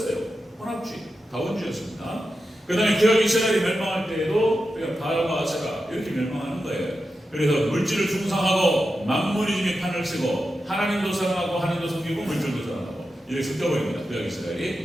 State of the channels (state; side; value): normal; both; correlation 0.90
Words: 혼합주의, 다원주의였습니다. 그 다음에 기억 이스라엘이 멸망할 때에도 그냥 바알과 아세라 이렇게 멸망하는 거예요. 그래서 물질을 숭상하고 만무리즘이 판을 치고 하나님도 사랑하고 하나님도 섬기고 물질도 사랑하고 이렇게 섞여버립니다. 구약